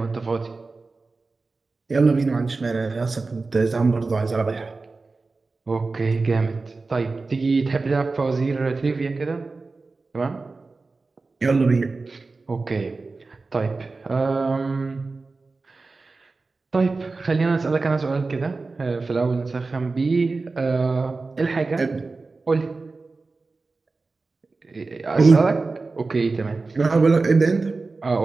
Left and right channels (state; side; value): quieter; left; 3.8 dB